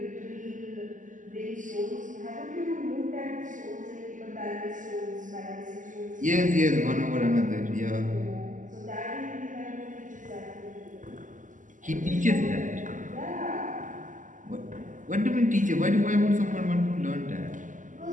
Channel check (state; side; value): late; left; 0.37 ms